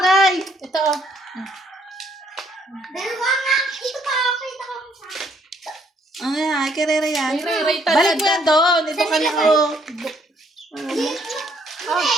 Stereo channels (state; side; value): normal; both; correlation 0.67